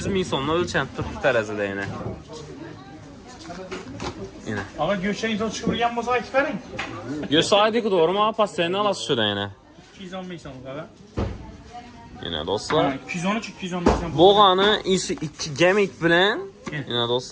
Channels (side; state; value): both; identical; correlation 1.00